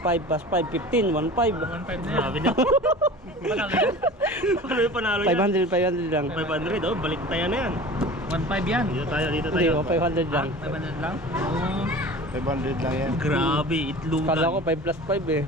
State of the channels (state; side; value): normal; both; correlation 0.38